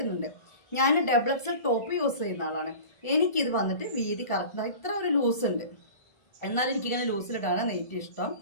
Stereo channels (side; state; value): right; late; 1.4 ms